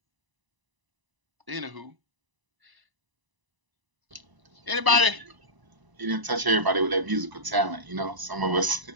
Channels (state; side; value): late; left; 1.0 ms